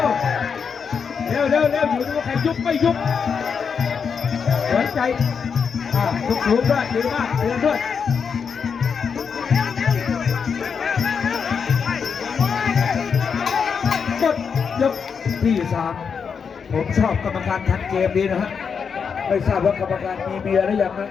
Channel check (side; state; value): right; quieter; 6.3 dB